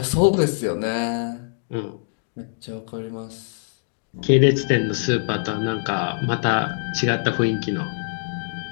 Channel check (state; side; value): silent; right; digital silence